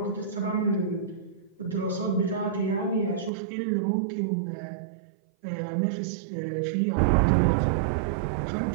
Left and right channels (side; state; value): left; drops out; at 3.3 s